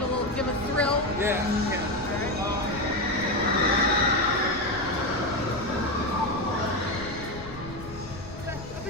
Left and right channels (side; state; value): left; noise; rumble, 14 dB below the sound